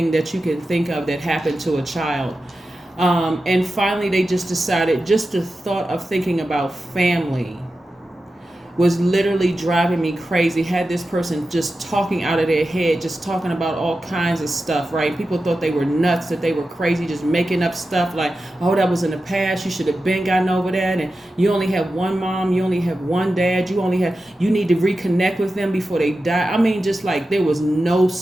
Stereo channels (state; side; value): normal; both; correlation 0.92